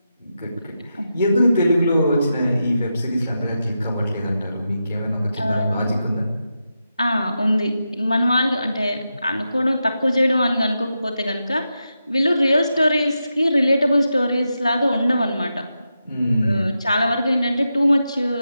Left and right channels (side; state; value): both; inverted; correlation -0.88